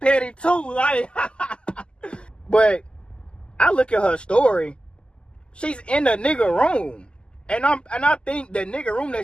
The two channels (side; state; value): right; late; 0.050 ms